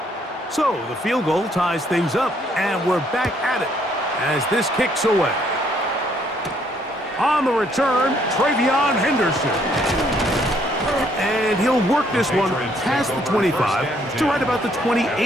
So the field goal ties things up, and we're back at it as this kicks away. On the return, Travion Henderson. And he'll work this one past the 25 to right about the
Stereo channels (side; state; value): both; normal; correlation 0.67